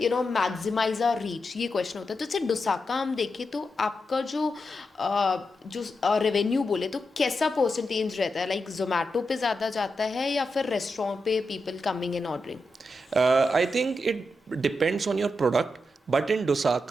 maximize our reach, ये क्वेश्चन होता है. तो जैसे डोसाका हम देखें तो आपका जो रेवेन्यू बोले तो कैसा परसेंटेज रहता है, लाइक जोमेटो पे ज़्यादा जाता है या फिर रेस्टोरेंट पे people coming and ordering? I think it depends on your product, but in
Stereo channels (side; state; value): both; normal; correlation 0.87